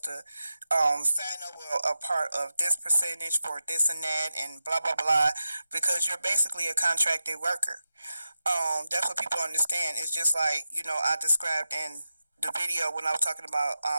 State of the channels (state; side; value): inverted; both; correlation -0.91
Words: to sign over a part of this percentage for this and that and blah, blah, blah, because you're basically a contracted worker. That's what people understand. It's just like, I described in the video when I was talking about